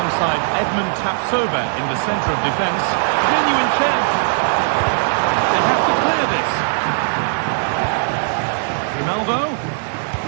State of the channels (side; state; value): left; silent; digital silence